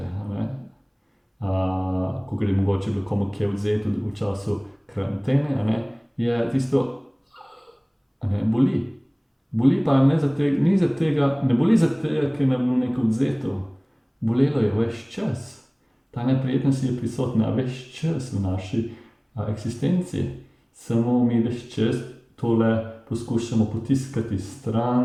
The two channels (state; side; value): identical; both; correlation 1.00